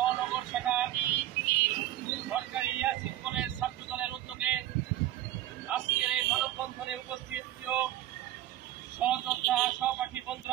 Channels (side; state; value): left; quieter; 13.9 dB